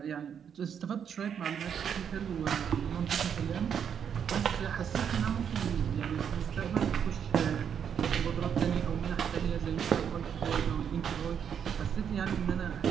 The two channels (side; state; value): left; quieter; 7.9 dB